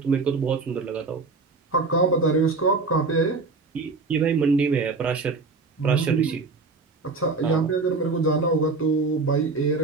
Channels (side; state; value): left; quieter; 4.0 dB